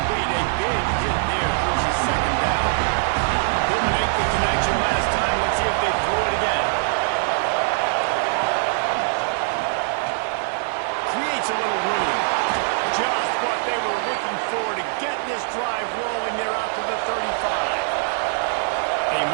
A big hit there, forces 2nd down. Couldn't make the connection last time. Let's see if they throw it again. Creates a little room. Just what they were looking for to get this drive rolling. They're out to the 35. They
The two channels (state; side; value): silent; left; digital silence